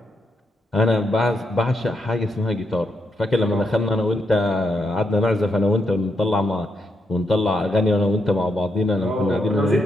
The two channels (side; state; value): both; normal; correlation 0.80